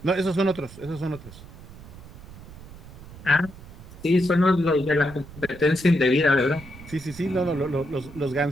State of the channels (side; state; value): right; noise; rumble, 17 dB below the sound